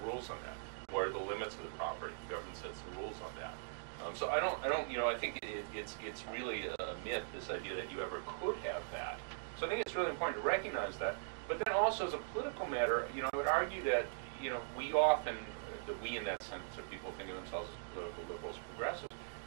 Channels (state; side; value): silent; left; digital silence